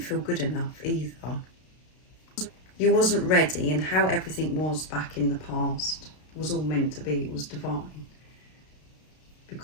good enough either. You wasn't ready, and how everything was back in the past was all meant to be, it was divine.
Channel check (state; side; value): late; right; 32 ms